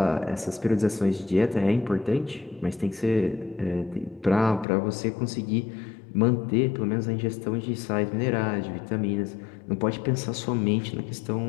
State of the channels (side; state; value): right; drops out; at 4.7 s